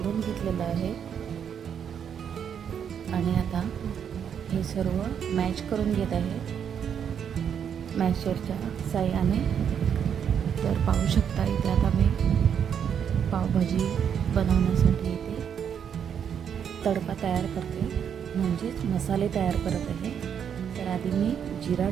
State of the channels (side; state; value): left; quieter; 8.1 dB